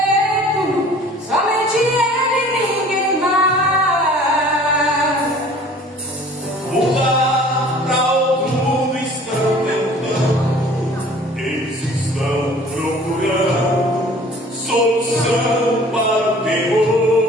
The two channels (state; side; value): normal; both; correlation 0.49